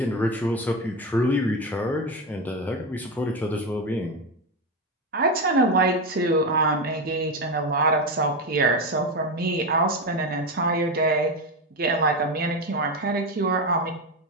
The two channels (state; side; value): normal; both; correlation 0.15